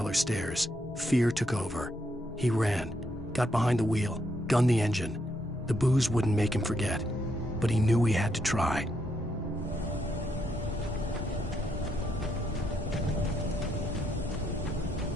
stairs, fear took over. He ran, got behind the wheel, gunned the engine. The booze wouldn't make him forget, but he knew he had to try.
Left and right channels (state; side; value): normal; both; correlation 0.77